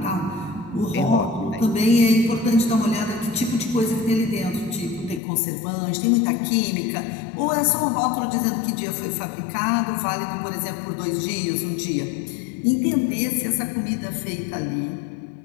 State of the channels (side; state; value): right; drops out; at 5.2 s